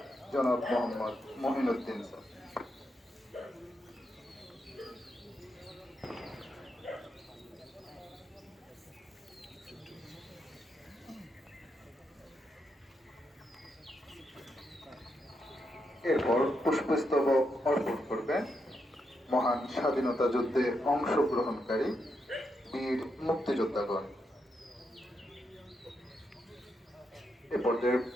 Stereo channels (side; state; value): both; normal; correlation 0.82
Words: জনাব মোহাম্মদ মহিনুদ্দিন স্যার। এরপর পুষ্পস্তবক অর্পণ করবেন মহান স্বাধীনতা যুদ্ধে অংশগ্রহণকারী বীর মুক্তিযোদ্ধাগণ। এ পর্যায়ে